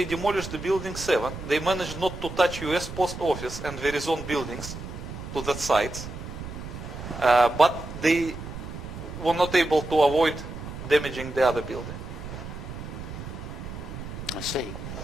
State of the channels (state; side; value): noise; right; rumble, 9 dB below the sound